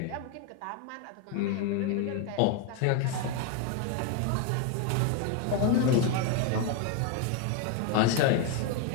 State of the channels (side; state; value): both; different; correlation 0.01